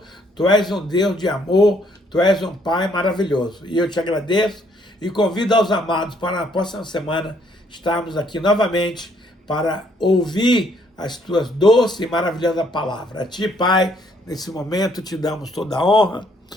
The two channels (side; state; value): both; normal; correlation 0.67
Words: Tu és um Deus de amor, Tu és um Pai maravilhoso. E eu te agradeço e convido aos amados para na próxima semana estarmos aqui novamente para ouvir as Tuas doces e maravilhosas palavras. A Ti, Pai, nesse momento te damos toda a honra,